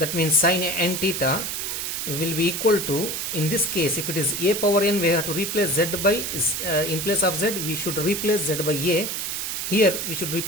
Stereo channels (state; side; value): noise; right; hiss, 3 dB below the sound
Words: means sin n theta, will be equal to, in this case, if it is a power n, we have to replace z by, in place of z, we should replace z by a. Here, we should